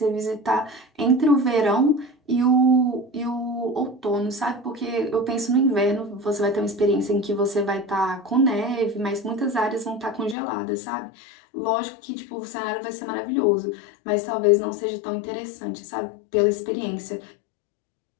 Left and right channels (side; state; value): right; drops out; at 10.4 s